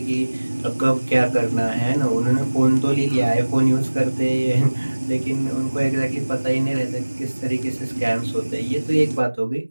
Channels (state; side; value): inverted; both; correlation -1.00